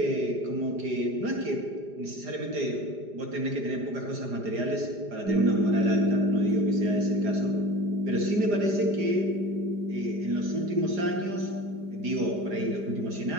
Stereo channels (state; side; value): late; left; 4.9 ms